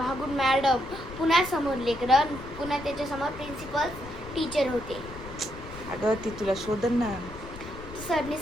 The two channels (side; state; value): left; noise; rumble, 15 dB below the sound